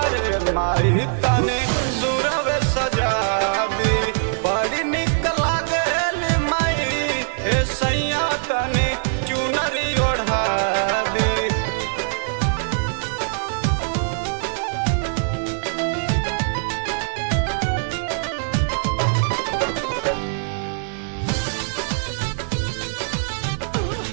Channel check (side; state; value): left; silent; digital silence